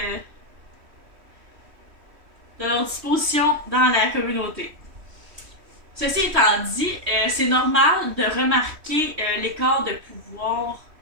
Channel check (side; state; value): left; late; 3.1 ms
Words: de leur disposition dans la communauté. Ceci étant dit, c'est normal de remarquer l'écart de pouvoir